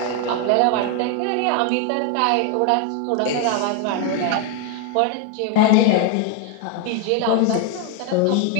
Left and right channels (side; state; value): both; different; correlation 0.01